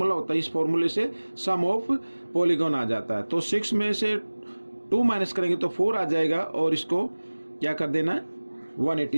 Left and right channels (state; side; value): inverted; both; correlation -1.00